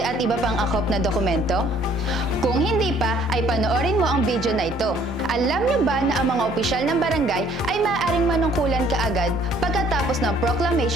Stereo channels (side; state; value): both; normal; correlation 0.60